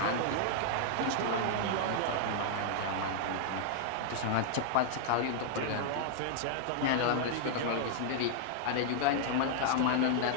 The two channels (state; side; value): different; both; correlation -0.01